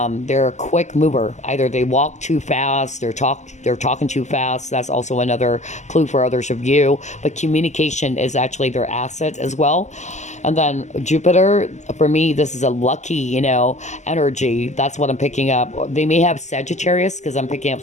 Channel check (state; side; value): late; right; 0.34 ms